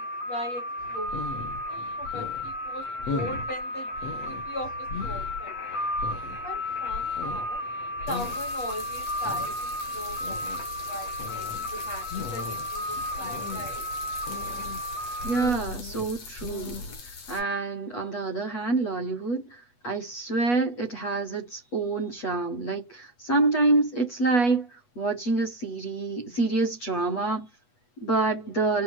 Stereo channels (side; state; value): right; late; 8.2 ms